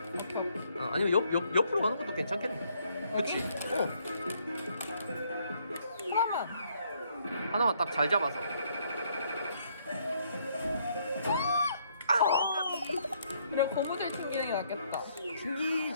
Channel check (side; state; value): both; inverted; correlation -0.69